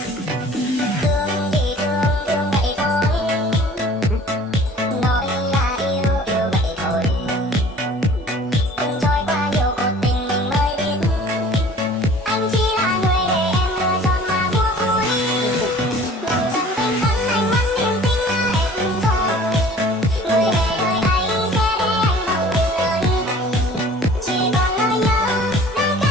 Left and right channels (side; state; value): both; normal; correlation 0.48